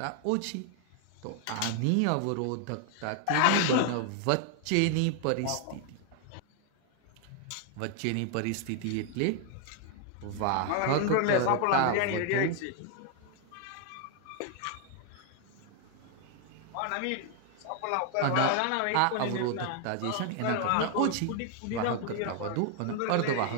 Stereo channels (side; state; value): both; different; correlation 0.00